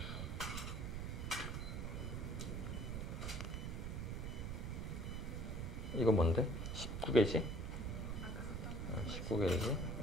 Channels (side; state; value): right; noise; rumble, 3 dB below the sound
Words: 이거 뭔데? 19게이지? 19게이지.